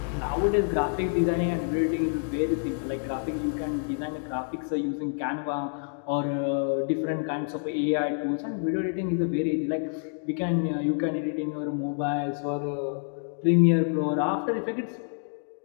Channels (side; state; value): right; silent; digital silence